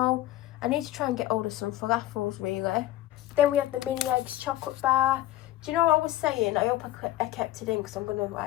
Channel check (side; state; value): right; quieter; 14.8 dB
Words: I need to try and get hold of some falafels, really. Then we have the mini eggs chocolate bar. Do you know what I was saying? I hope I kept it in, because I'm going to,